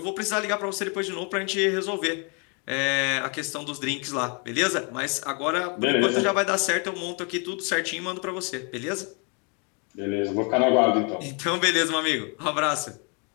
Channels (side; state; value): right; quieter; 35.3 dB